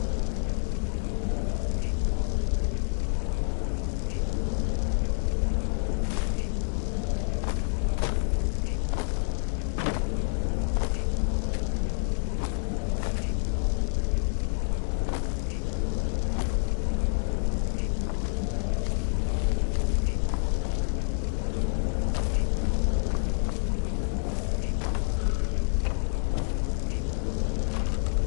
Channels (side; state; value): right; silent; digital silence